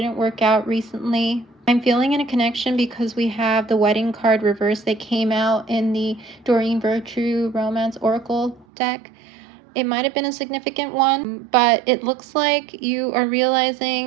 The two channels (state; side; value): drops out; left; at 8.7 s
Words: work out recently. I'm feeling in a connection because we have the wedding card reverse that came out in the Doreen Virtue Romance Oracle deck. It might have been a significant one, but it looks like you are